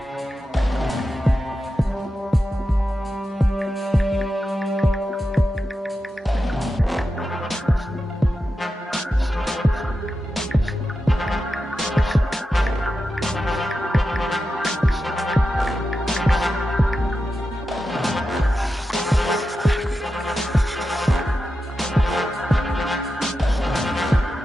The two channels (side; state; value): both; normal; correlation 0.90